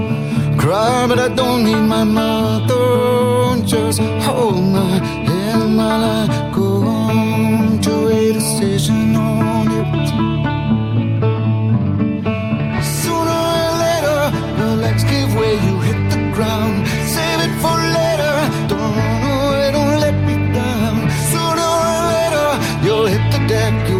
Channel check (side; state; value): both; identical; correlation 1.00